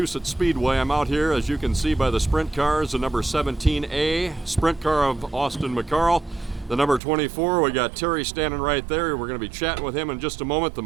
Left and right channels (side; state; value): left; drops out; at 7.0 s